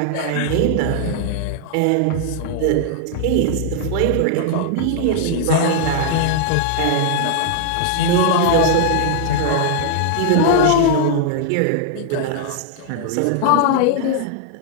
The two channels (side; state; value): both; different; correlation 0.00